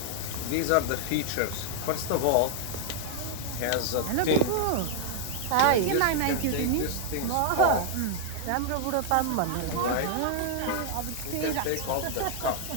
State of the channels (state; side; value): different; both; correlation -0.01